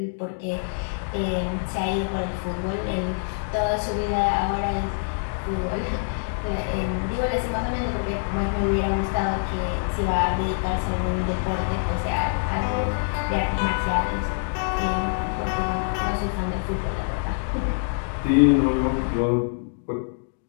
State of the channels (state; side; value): silent; right; digital silence